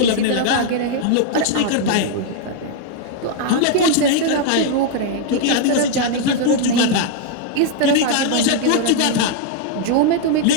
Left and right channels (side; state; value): both; different; correlation -0.01